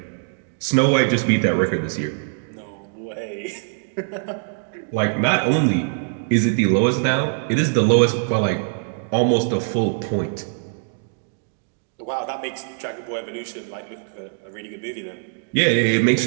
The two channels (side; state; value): left; silent; digital silence